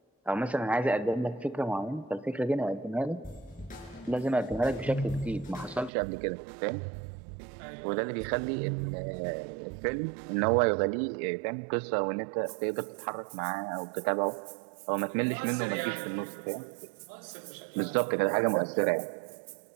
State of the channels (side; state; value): left; drops out; at 5.9 s